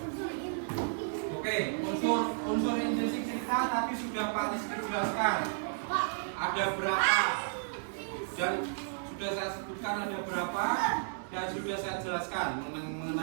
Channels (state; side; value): silent; left; 56 dB below the other